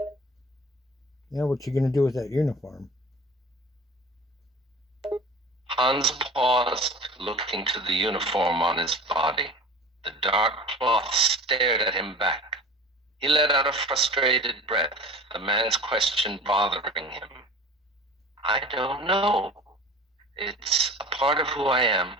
Yeah, what you going to do with that uniform? Hans paused, looking to the uniform on his body. The dark cloth stared at him back. He let out a frustrated breath, the man's question bothering him. I don't know. It's a part of who I am.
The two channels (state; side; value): normal; both; correlation 0.39